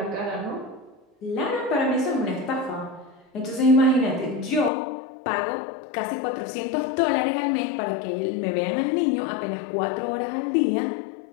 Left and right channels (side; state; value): right; drops out; at 4.7 s